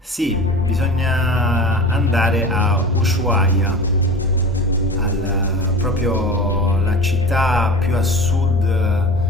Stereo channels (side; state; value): both; normal; correlation 0.33